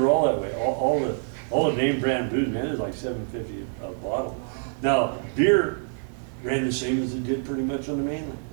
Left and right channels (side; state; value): left; silent; 61 dB below the other